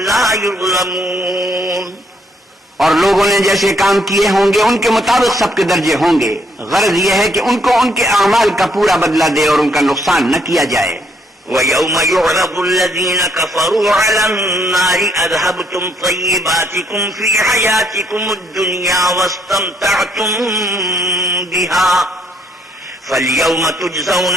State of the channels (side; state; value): both; normal; correlation 0.70